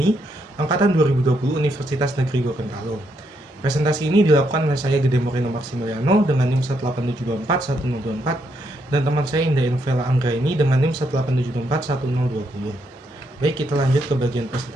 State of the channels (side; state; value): both; normal; correlation 0.77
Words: Angkatan 2020 Universitas Negeri Gorontalo. Presentasi ini dilakukan oleh saya Gede Moreno Maximiliano dengan NIM 187241024 dan teman saya Indah Novela Anggraini dengan NIM 187241020. Baik, kita lanjut ke bagian